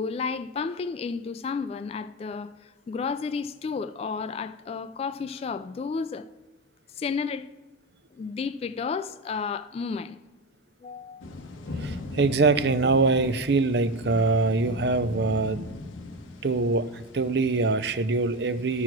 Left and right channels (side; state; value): both; normal; correlation 0.18